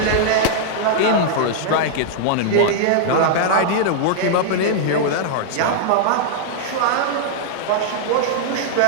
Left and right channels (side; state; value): both; different; correlation -0.01